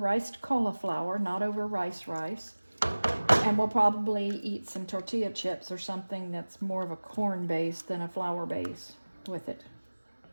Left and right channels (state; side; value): inverted; both; correlation -1.00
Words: cauliflower, not over rice. And we'll probably eat some tortilla chips or something that's more of a corn base than a flour base with it.